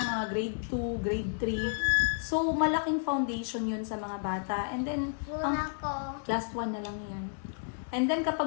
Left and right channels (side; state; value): right; silent; digital silence